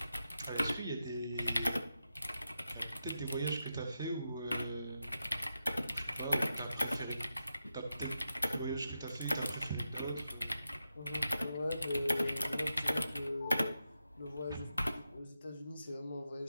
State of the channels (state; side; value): inverted; both; correlation -0.88